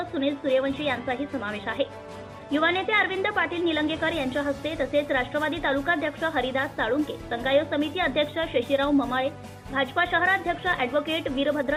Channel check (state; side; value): identical; both; correlation 1.00